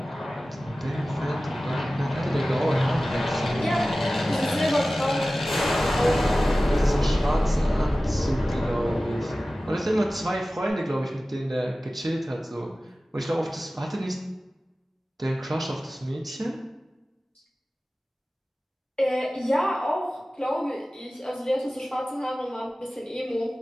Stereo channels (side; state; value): both; normal; correlation 0.96